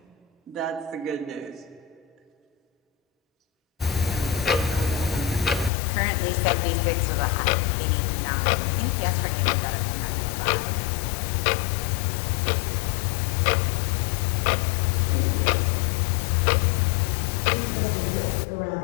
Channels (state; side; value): drops out; right; at 5.7 s